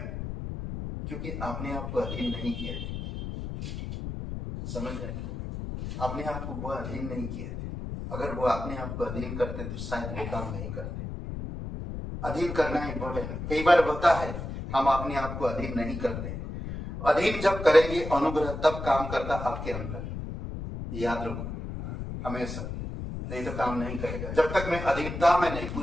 क्योंकि आपने आप को अधीन नहीं किया, समझ रहे? अपने आप को वो अधीन नहीं किए थे। अगर वो अपने आप को अधीन करते तो शायद वो काम नहीं करते। अधीन करना इम्पोर्टेंट है। कई बार होता है हम अपने आप को अधीन नहीं करते। अधीन जब करेंगे अनुग्रह तब काम करता आपके अंदर, याद रखो हमेशा, नहीं तो काम नहीं करेगा। जब तक मैं अधीनता में नहीं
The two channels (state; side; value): noise; left; rumble, 6 dB below the sound